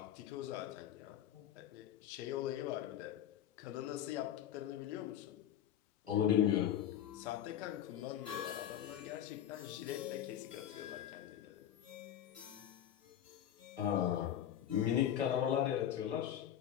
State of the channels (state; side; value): quieter; right; 10.6 dB